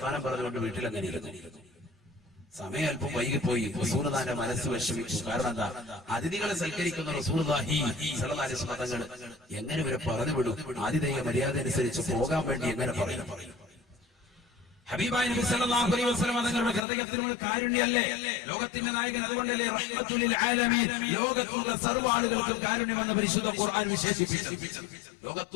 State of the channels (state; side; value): drops out; right; at 16.8 s